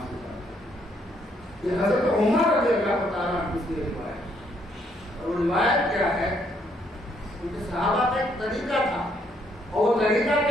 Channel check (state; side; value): normal; both; correlation 0.71